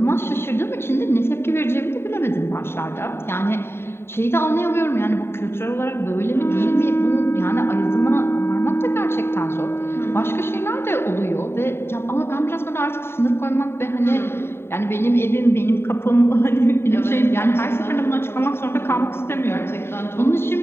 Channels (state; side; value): late; right; 0.11 ms